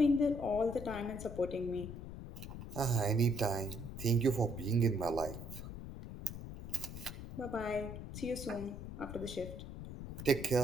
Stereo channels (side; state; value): left; noise; rumble, 9 dB below the sound